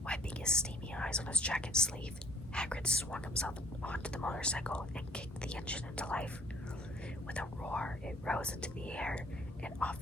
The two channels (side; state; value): both; normal; correlation 0.57